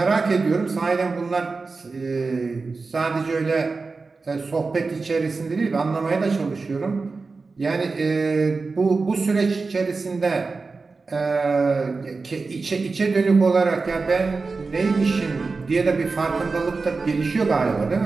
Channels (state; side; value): quieter; left; 4.1 dB